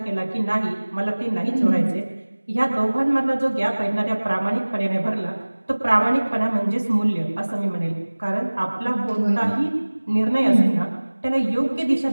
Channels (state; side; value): inverted; both; correlation -1.00